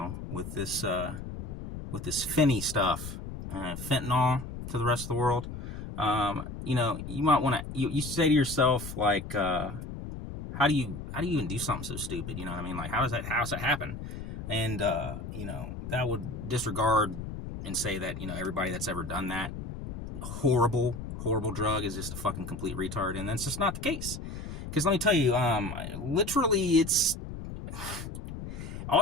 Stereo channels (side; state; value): left; noise; rumble, 8 dB below the sound